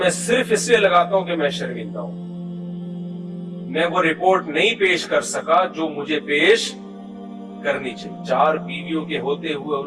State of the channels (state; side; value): identical; both; correlation 1.00